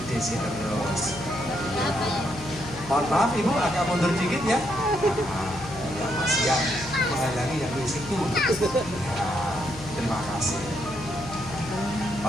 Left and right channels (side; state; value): left; noise; hum, 14 dB below the sound